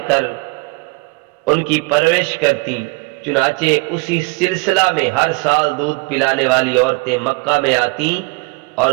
کر ان کی پرورش کرتی، چنانچہ اسی سلسلہ میں ہر سال دودھ پلانے والی عورتیں مکہ میں آتی اور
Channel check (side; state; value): left; quieter; 27.6 dB